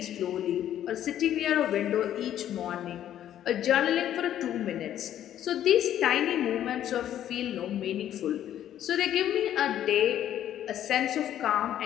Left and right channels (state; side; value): quieter; right; 11.2 dB